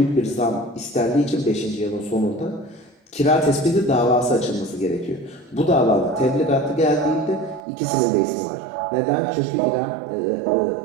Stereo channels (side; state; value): left; drops out; at 7.6 s